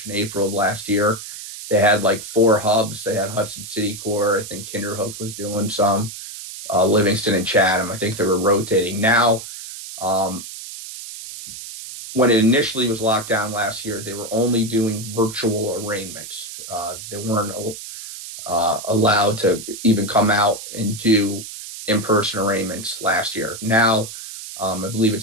and April of last year, they had like 4 hubs. They had Hudson City Court. I think Kinderhook was doing some, Livingston and Chatham. I think they were rotating. Now, when it initially was locked down last year, they were only doing virtual arraignments. They weren't allowed to even come out and do in-person arraignments last year. Now, I believe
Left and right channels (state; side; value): noise; right; hiss, 11 dB below the sound